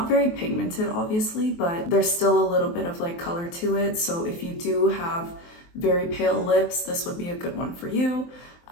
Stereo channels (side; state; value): right; late; 23 ms